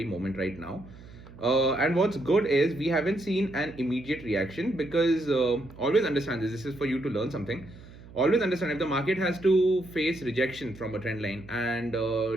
moment right now. And what's good is we haven't seen an immediate reaction, because always understand this. This is for you to learn something. Always understand, if the market has to face rejection from a trend line and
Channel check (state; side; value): noise; right; hum, 19 dB below the sound